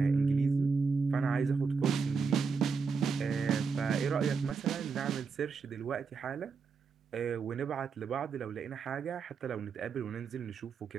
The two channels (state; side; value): quieter; left; 5.3 dB